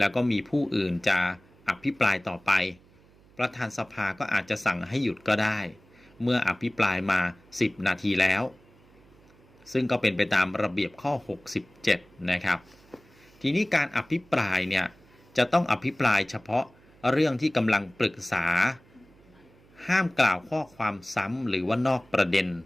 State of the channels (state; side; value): noise; right; hum, 28 dB below the sound